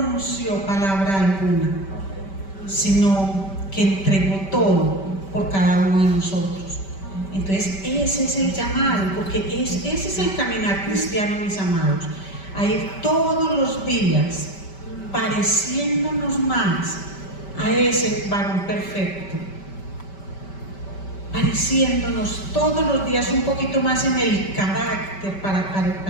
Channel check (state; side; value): late; right; 5.2 ms